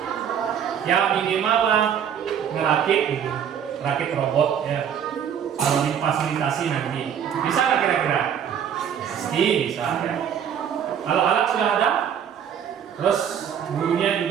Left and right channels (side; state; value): left; quieter; 8.6 dB